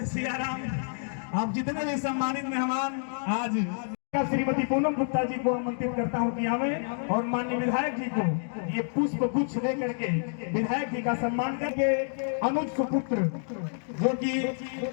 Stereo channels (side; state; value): right; silent; digital silence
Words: सिया राम। आप जितने भी सम्मानित मेहमान आज श्रीमती पूनम गुप्ता जी को आमंत्रित करता हूं कि आवे और माननीय विधायक जी को ये पुष्प गुच्छ दे करके विधायक जी का सम्मान करके अनुज सुपुत्र जो कि